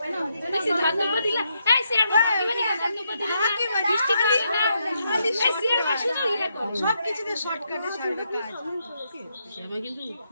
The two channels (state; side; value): inverted; both; correlation -0.79